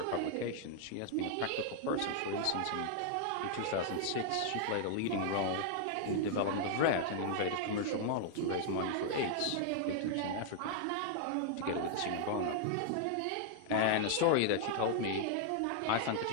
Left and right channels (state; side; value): different; both; correlation -0.01